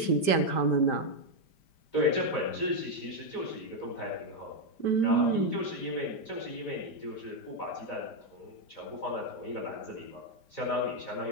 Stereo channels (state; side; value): late; right; 5.1 ms